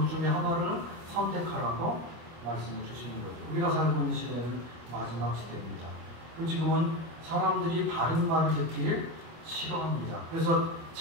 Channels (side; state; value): left; late; 25 ms